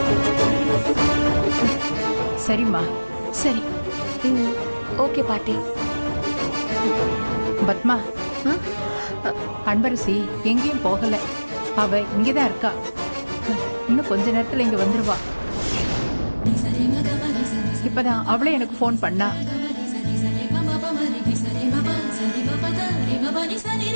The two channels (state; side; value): inverted; both; correlation -1.00